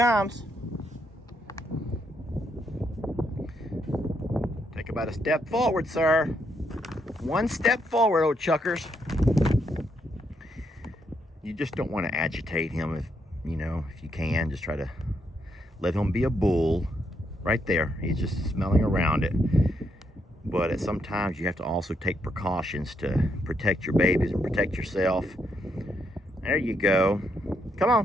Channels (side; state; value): both; normal; correlation 0.77